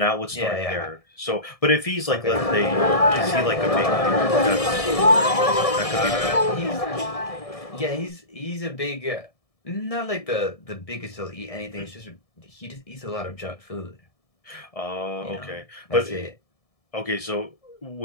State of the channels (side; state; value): right; late; 1.7 ms